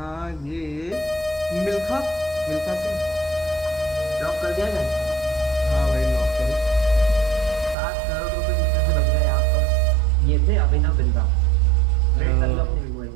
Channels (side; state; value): left; drops out; at 7.8 s